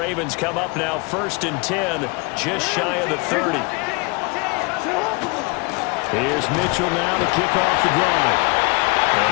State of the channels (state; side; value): quieter; right; 29.0 dB